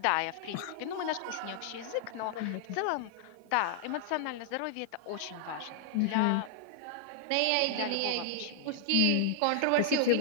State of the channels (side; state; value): both; different; correlation -0.01